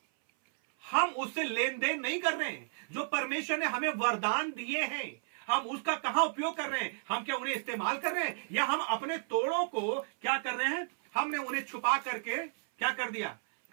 हम उससे लेन देन नहीं कर रहे हैं। जो परमेश्वर ने हमें वरदान दिए हैं, हम उसका कहां उपयोग कर रहे हैं? हम क्या उन्हें इस्तेमाल कर रहे हैं, या हम अपने तोड़ों को क्या कर रहे हैं? हमने उन्हें छुपा करके क्या कर दिया?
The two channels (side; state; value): left; silent; 56 dB below the other